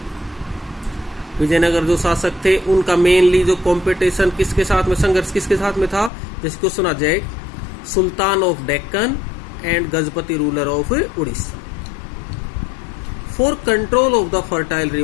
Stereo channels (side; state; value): right; drops out; at 6.1 s